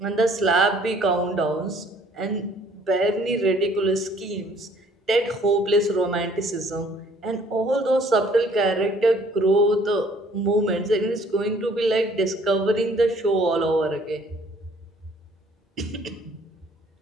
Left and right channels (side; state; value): both; normal; correlation 0.58